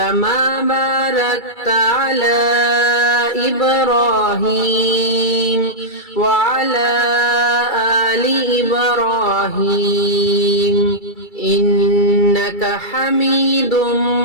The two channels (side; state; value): right; late; 2.3 ms